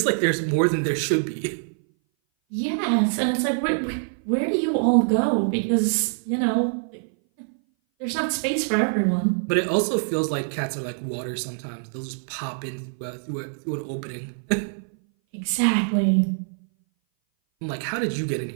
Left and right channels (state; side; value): silent; left; 59 dB below the other